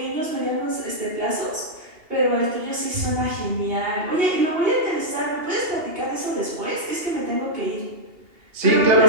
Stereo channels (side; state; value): left; late; 2.8 ms